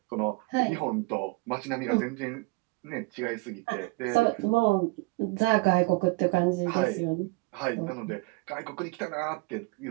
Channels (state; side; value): quieter; left; 25.5 dB